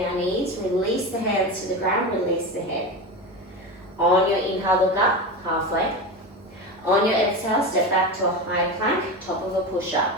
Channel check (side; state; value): both; normal; correlation 0.23